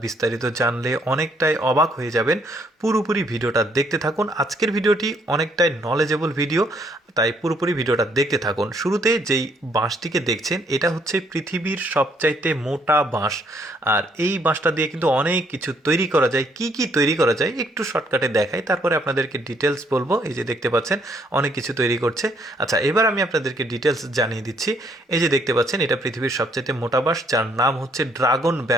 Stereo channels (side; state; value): both; normal; correlation 0.68